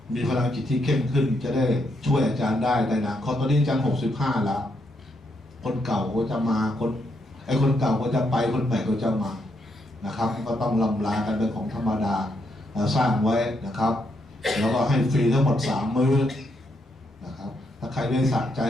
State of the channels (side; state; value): both; normal; correlation 0.78